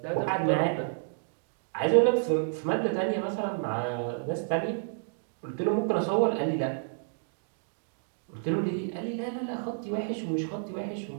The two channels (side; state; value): left; silent; digital silence